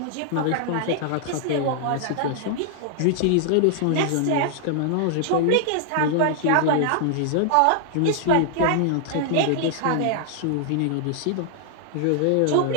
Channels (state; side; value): different; both; correlation -0.01